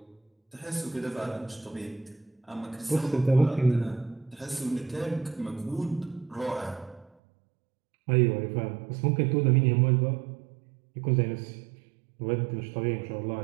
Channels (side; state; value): left; drops out; at 7.1 s